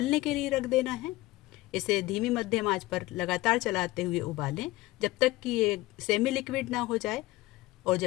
के लिए रख देना है। इसे धीमी मध्यम आंच पर लगातार चलाते हुए उबालें जब तक कि ये सेमी लिक्विड ना हो जाए। और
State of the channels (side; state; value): right; quieter; 19.2 dB